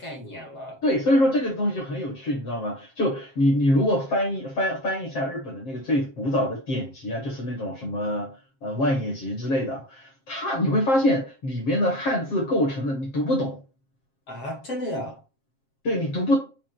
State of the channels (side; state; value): right; late; 7.5 ms